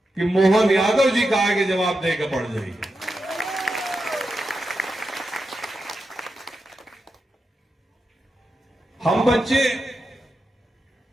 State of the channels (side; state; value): both; normal; correlation 0.88